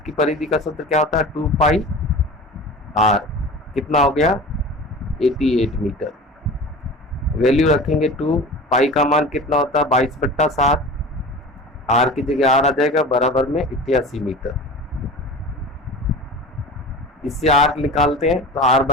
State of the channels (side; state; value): both; normal; correlation 0.35